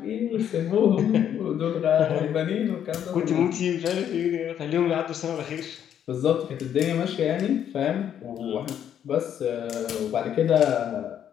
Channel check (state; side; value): quieter; right; 9.5 dB